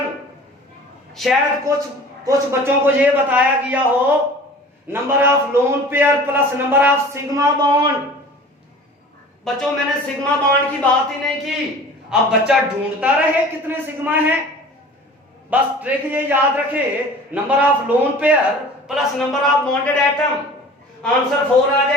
शायद कुछ बच्चों को यह बताया गया हो number of lone pair plus number of sigma bond. बच्चों मैंने सिग्मा बॉन्ड की बात ही नहीं की। अब बच्चा ढूंढता रहे कितने सिग्मा हैं, बस ट्रिक ये याद रखे, number of lone pair plus number of bonded atom. Answer 4 आ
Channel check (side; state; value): both; normal; correlation 0.43